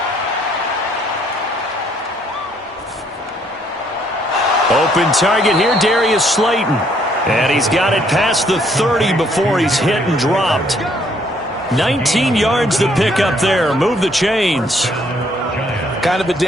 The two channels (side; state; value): both; normal; correlation 0.67